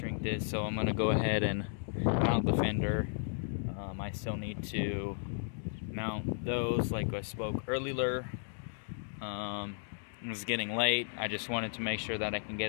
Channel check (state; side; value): silent; right; digital silence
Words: this, so I'm gonna go ahead and mount the fender. I still need to mount those like I spoke earlier. It was getting late. I just wanted to make sure that I can